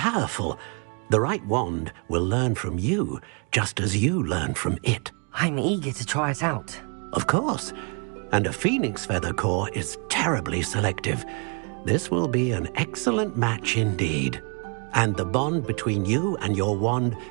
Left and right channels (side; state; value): left; quieter; 36.2 dB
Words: The right wand will learn from you, just as you learn from it. I'm eager to try it out. Of course. And a phoenix feather core is terribly selective. This will be an excellent match indeed. And the bond between you and your wand